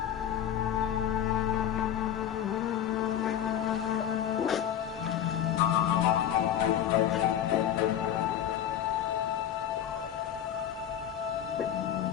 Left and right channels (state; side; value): quieter; right; 10.1 dB